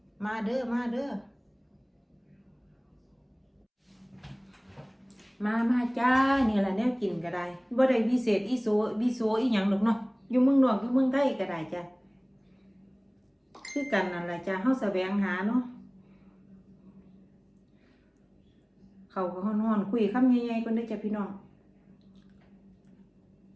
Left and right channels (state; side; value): identical; both; correlation 1.00